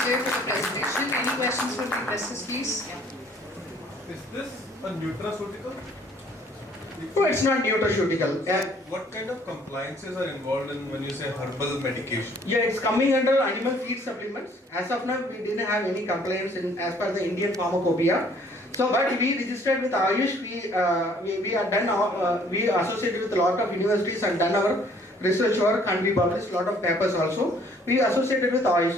for the presentation. Any questions from the investors, please? Yeah. Is this a nutraceutical? No, it's not nutraceutical. What kind of compliances are involved in when you say herbal medication? Yeah, it's coming under animal feed supplements. As of now, we didn't have any complaints as per the Indian Pharmacopoeia. So, but we registered with Ayush. We are done. We associated with a lot of universities and done our research work, and we published a lot of papers also. We associated with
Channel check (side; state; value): both; normal; correlation 0.59